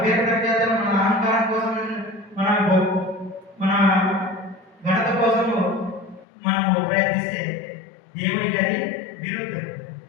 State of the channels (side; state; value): right; drops out; at 6.2 s